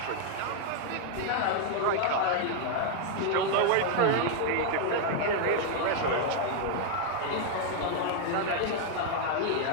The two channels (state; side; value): different; both; correlation 0.00